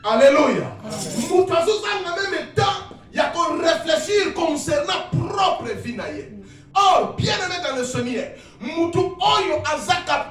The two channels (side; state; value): both; identical; correlation 1.00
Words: Alléluia. Mutu azo zanga même temps ya ko réfléchir concernant propre vie na ye. Oh, bien aimé dans le Seigneur, mutu oyo aza